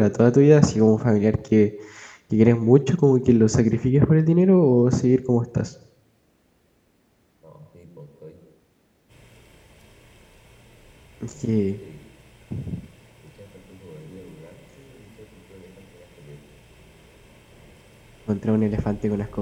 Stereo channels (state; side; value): identical; both; correlation 1.00